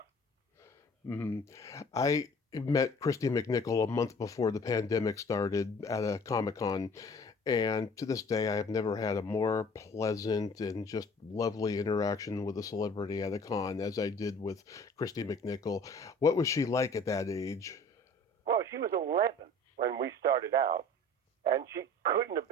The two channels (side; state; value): both; normal; correlation 0.48